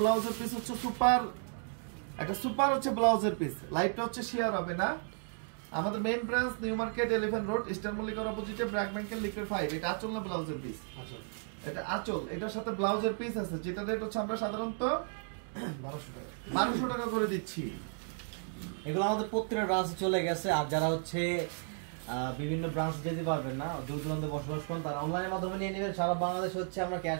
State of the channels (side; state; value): left; silent; 55 dB below the other